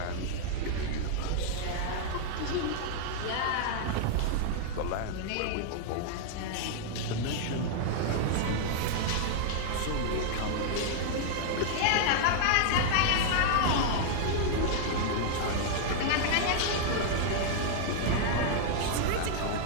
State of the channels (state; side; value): different; both; correlation -0.01